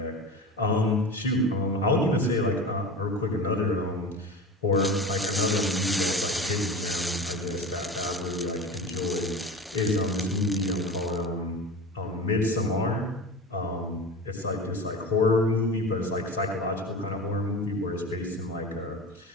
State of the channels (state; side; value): normal; both; correlation 0.31